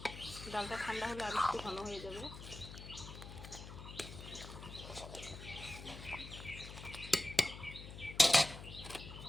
ডালটা ঠান্ডা হলে আর একটু ঘন হয়ে যাবে।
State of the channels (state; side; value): noise; left; hum, 12 dB below the sound